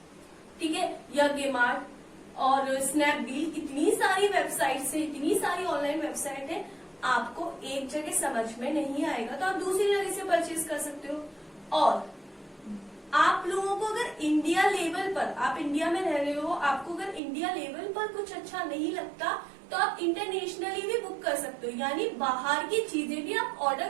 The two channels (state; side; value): drops out; left; at 17.2 s